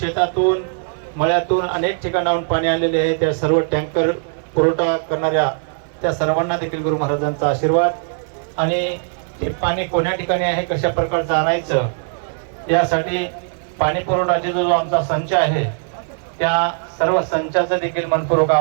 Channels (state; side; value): silent; left; 62 dB below the other